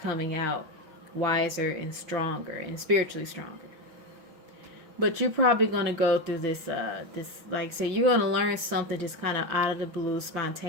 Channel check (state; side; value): late; left; 5.8 ms